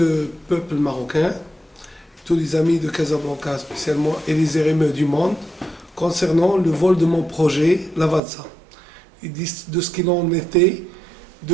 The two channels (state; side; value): drops out; left; at 8.2 s